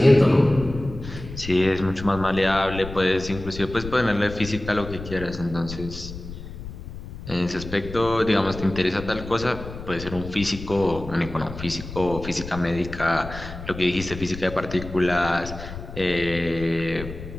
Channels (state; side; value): noise; left; rumble, 11 dB below the sound